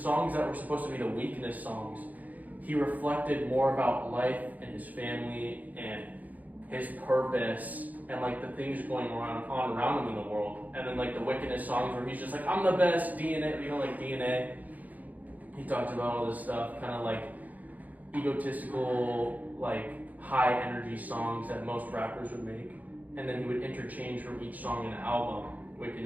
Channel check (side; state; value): left; late; 0.079 ms